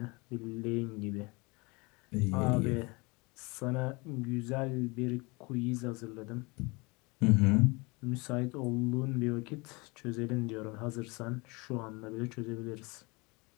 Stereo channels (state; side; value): quieter; right; 27.1 dB